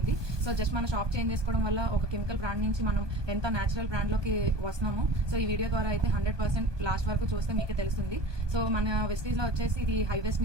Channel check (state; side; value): late; left; 1.2 ms